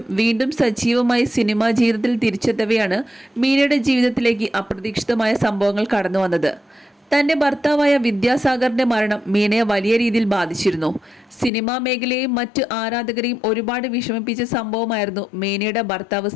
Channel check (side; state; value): right; drops out; at 11.5 s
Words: വീണ്ടും സജീവമായി സിനിമാ ജീവിതത്തിൽ തിരിച്ചെത്തവെയാണ് മീനയുടെ ജീവിതത്തിലേക്ക് അപ്രതീക്ഷിതമായ സംഭവങ്ങൾ കടന്നു വന്നത്. തന്റെ ഭർത്താവായ വിദ്യാസാഗറിന്റെ മരണം മീനയെ വലിയ രീതിയിൽ ബാധിച്ചിരുന്നു. സിനിമാ മേഖലയെയും മറ്റ് ആരാധകരെയും ഒരുപാട് വിഷമിപ്പിച്ച സംഭവമായിരുന്നു മീനയുടെ ഭർത്താവ്